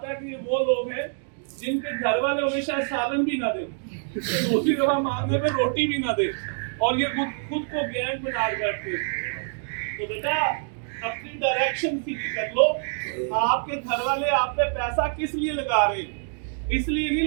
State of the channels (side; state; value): left; silent; digital silence